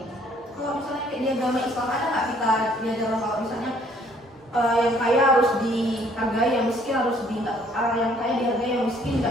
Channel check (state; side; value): normal; both; correlation 0.61